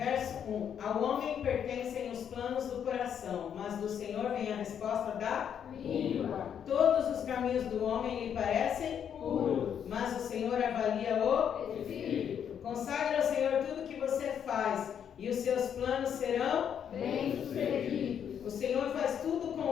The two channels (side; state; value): right; quieter; 8.5 dB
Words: 1. Ao homem pertencem os planos do coração, mas do Senhor vem a resposta da língua. Todos os caminhos do homem lhe parecem puros, mas o Senhor avalia o espírito. Consagre ao Senhor tudo que você faz, e os seus planos serão bem-sucedidos. O Senhor faz tudo com